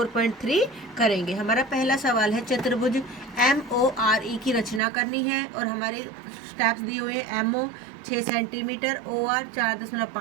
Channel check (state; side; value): drops out; left; at 4.8 s